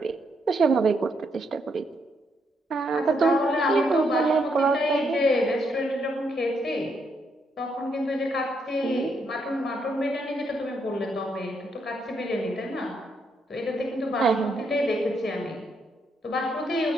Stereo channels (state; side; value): normal; both; correlation 0.76